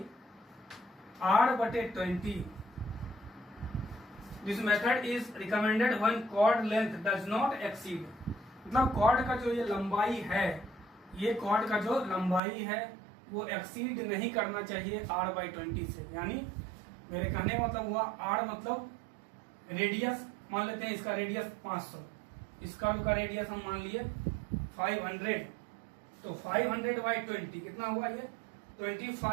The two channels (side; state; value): left; drops out; at 12.4 s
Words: r/20, this method is recommended when chord length does not exceed. मतलब कॉर्ड का जो ये लंबाई है, ये कॉर्ड का जो लंबाई है वो एक्सीड नहीं करना चाहिए r/20 से। यानी मेरे कहने का मतलब हुआ, r मतलब रेडियस, मान लेते हैं इसका रेडियस 500, इसका रेडियस हम मान लिए 500, तो 500/20 कितना हुआ, ये